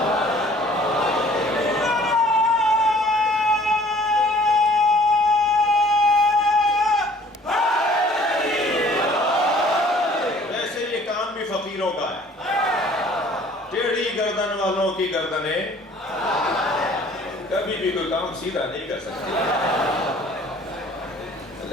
گردن والوں کی گردنیں کبھی بھی کوئی کام سیدھا نہیں کر سکتی،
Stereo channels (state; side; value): normal; both; correlation 0.53